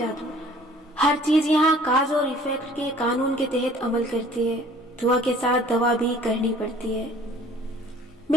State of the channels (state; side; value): normal; both; correlation 0.53